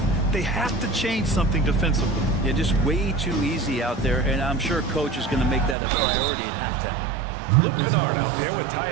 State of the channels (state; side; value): drops out; left; at 5.8 s